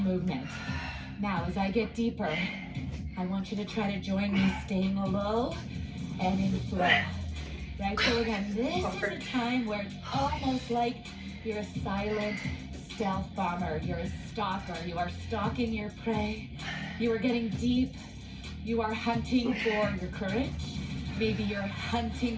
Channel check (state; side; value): identical; both; correlation 1.00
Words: Now, as I get deeper, I want you to try to join me staying low and in flow. Right, so again, this is a time where it's almost like you're a silent stealth bomber. You're a stalker. You are stalking your prey. You are getting deep. You are hunting for your courage. Maybe you're